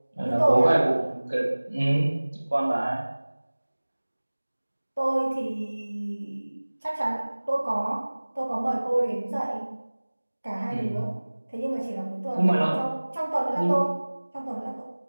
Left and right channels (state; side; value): inverted; both; correlation -1.00